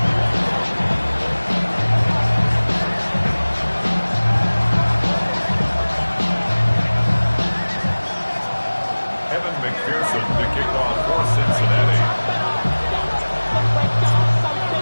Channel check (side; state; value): both; inverted; correlation -1.00